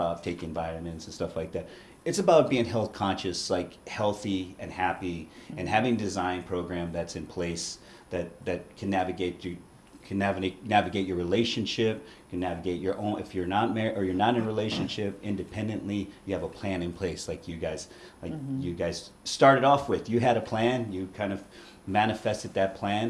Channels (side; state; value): both; identical; correlation 1.00